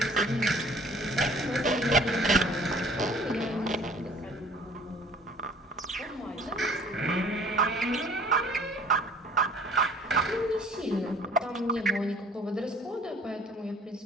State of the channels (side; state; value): both; normal; correlation 0.52